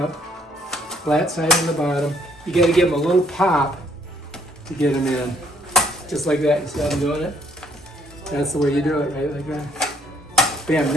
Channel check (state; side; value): normal; both; correlation 0.64